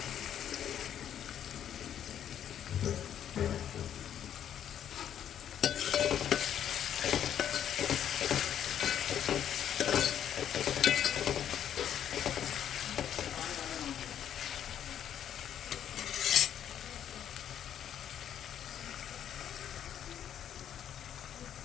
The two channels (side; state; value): right; quieter; 9.7 dB